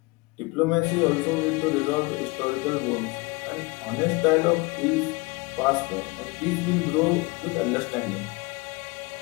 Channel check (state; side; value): quieter; right; 25.2 dB